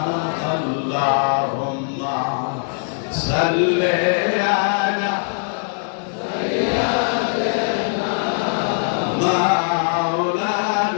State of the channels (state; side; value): silent; right; 65 dB below the other